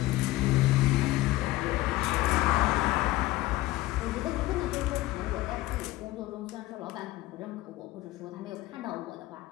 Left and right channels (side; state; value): right; quieter; 17.6 dB